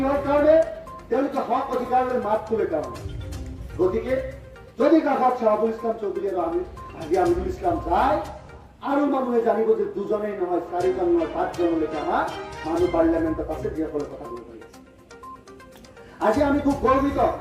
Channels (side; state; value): both; identical; correlation 1.00